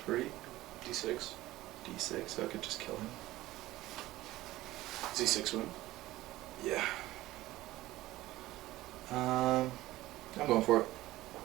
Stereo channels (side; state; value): left; quieter; 17.0 dB